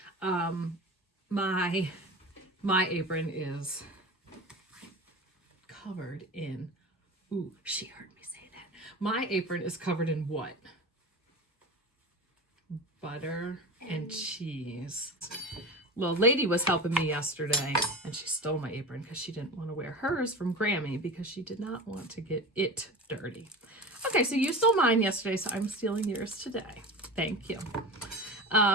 My apron is covered in, ooh, she heard me say that. My apron is covered in what? Butter and cheese. Little lady was helping me yesterday and she stole my apron because she didn't want to wear hers from Grammy because she did not want to get it dirty. Okay, so you stole mine yesterday, so I'm stealing yours today. Thank you.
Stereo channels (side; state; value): both; normal; correlation 0.30